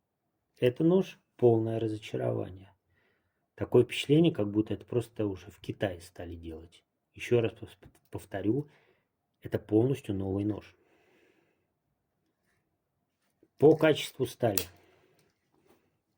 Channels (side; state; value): both; identical; correlation 1.00